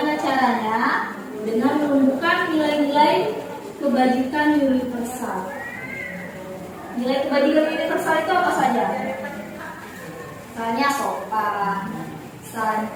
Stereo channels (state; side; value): identical; both; correlation 1.00